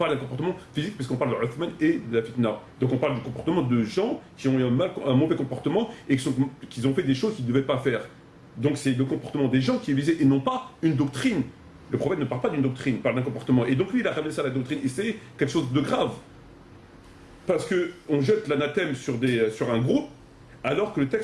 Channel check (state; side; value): identical; both; correlation 1.00